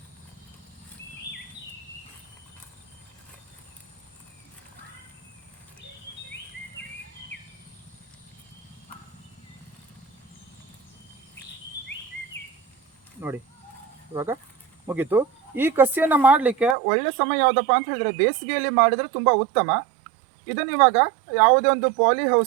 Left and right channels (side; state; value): left; drops out; at 16.8 s